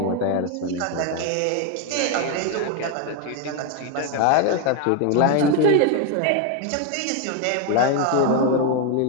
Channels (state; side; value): different; both; correlation 0.01